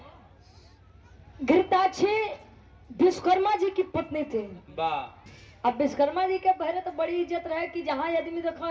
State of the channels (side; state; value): both; identical; correlation 1.00